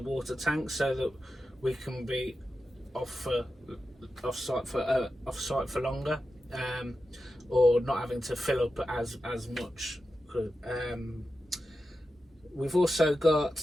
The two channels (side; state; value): both; normal; correlation 0.91